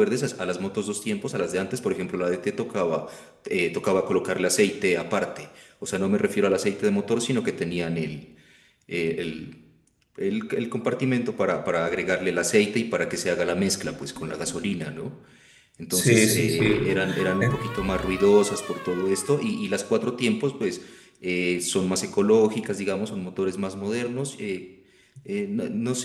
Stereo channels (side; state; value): both; identical; correlation 1.00